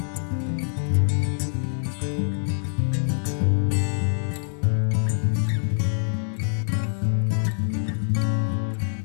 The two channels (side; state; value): right; silent; digital silence